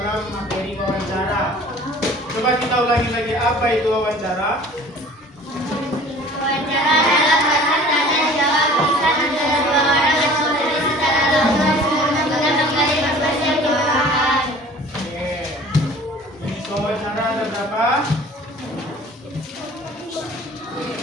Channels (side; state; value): both; normal; correlation 0.47